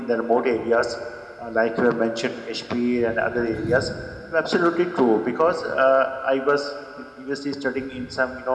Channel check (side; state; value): both; identical; correlation 1.00